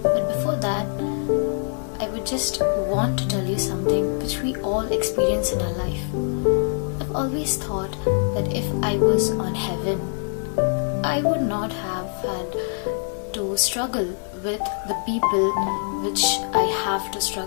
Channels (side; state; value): right; silent; 56 dB below the other